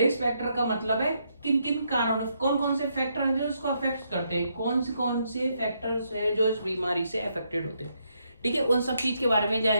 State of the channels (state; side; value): inverted; both; correlation -0.77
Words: फैक्टर का मतलब है किन किन कारणों, कौन कौन से फैक्टर हैं जो इसको अफेक्ट करते हैं, कौन से फैक्टर्स हैं जो इस बीमारी से अफेक्टेड होते हैं। ठीक है, उन सब चीज के बारे में